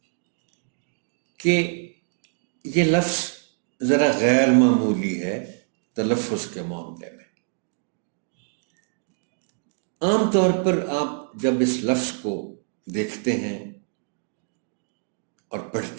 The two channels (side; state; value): left; silent; digital silence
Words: کہ یہ لفظ ذرا غیر معمولی ہے تلفظ کے معاملے میں۔ عام طور پر آپ جب اس لفظ کو دیکھتے ہیں اور